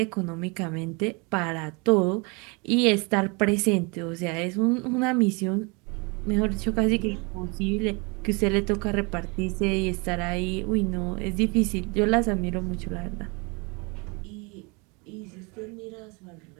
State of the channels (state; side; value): quieter; left; 30.1 dB